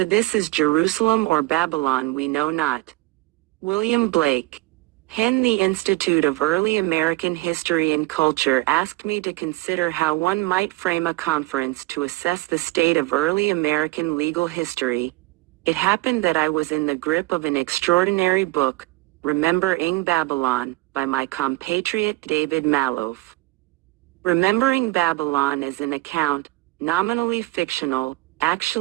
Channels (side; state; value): left; quieter; 20.7 dB